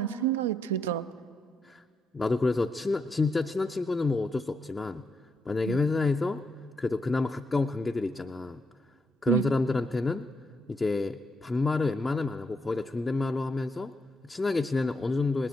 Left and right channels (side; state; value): both; normal; correlation 0.80